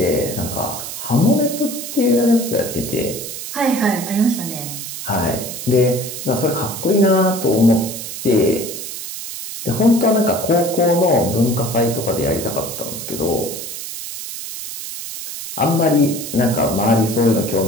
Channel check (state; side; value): noise; right; hiss, 8 dB below the sound